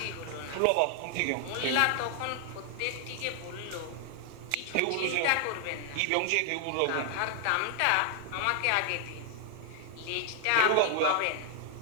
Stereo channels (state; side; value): different; both; correlation 0.00